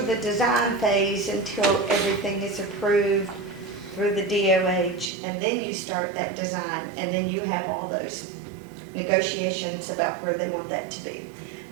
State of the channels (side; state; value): left; drops out; at 5.1 s